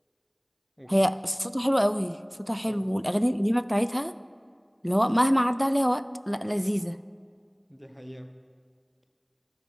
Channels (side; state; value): both; identical; correlation 1.00